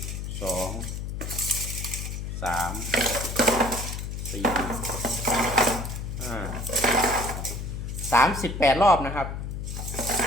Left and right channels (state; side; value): noise; left; hum, 5 dB below the sound